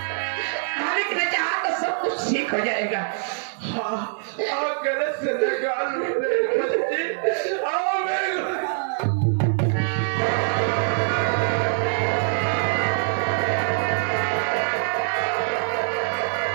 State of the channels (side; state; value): left; silent; 60 dB below the other